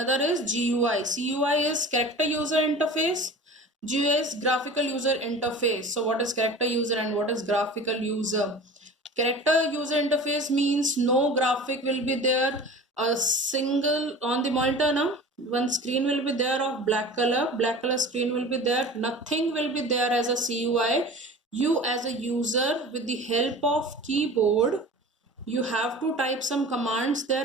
is GUI. CUI is character user interface. GUI is graphical user interface. So what is character user and what is graphical user? Character user interface means no graphic will be there, a single on the monitor now. One screen will be there of black color screen will be there, nothing will be there as a CUI. You as a user with the help of keyboard, you have to type some commands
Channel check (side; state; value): both; normal; correlation 0.38